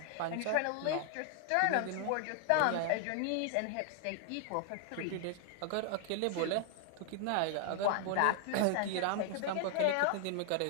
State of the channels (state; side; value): different; both; correlation 0.00